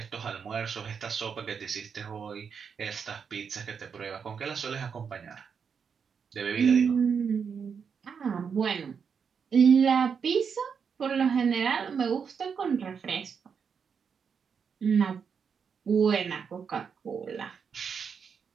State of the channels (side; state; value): left; quieter; 6.5 dB